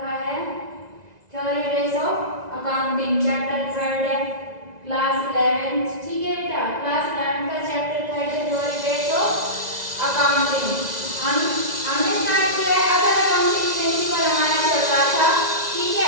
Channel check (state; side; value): late; left; 1.9 ms